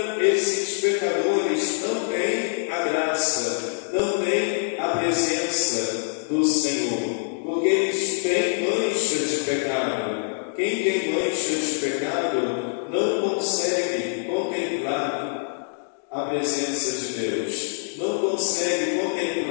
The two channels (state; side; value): silent; right; digital silence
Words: esses pecadores não têm a graça, não têm a presença do Senhor, porque eles têm mancha de pecado. Quem tem mancha de pecado não consegue contemplar a presença de Deus, não consegue